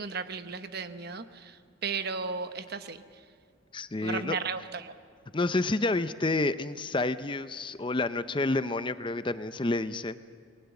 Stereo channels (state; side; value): normal; both; correlation 0.41